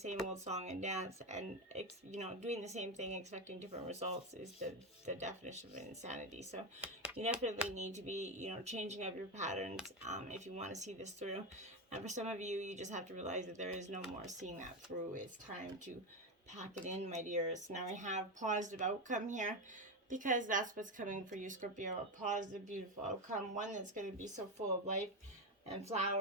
old song and dance and, doing the same thing, expecting different results is the definition of insanity. So you definitely need to be, changing up your patterns if you want to see this through. And for some of you, you just have to realize that there is no more seeing that through. It's time to pack it in, my dears. Now we have positive outcome here, because that's what's coming for you, Scorpio. A positive, beautiful outcome. One that's going to be so full of life and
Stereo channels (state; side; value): normal; both; correlation 0.13